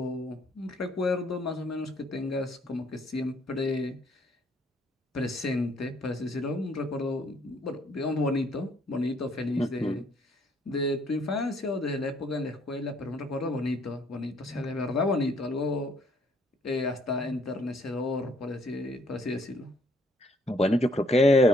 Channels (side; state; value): both; normal; correlation 0.65